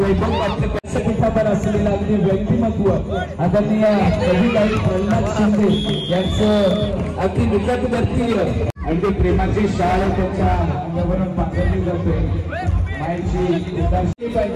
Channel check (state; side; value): identical; both; correlation 1.00